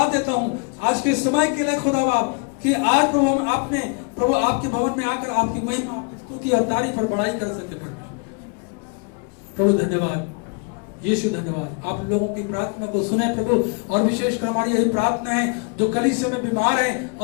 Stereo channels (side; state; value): right; quieter; 36.5 dB